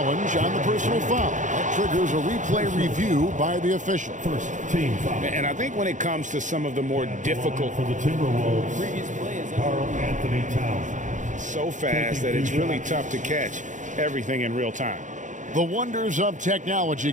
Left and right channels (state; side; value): late; left; 0.36 ms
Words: on the personal foul. That triggers a replay review by the official. First team foul. And I think when it comes to some of the more difficult for the Timberwolves, Karl Anthony Towns. So fast that it's really tough to catch everything in real time. The wonders of technology.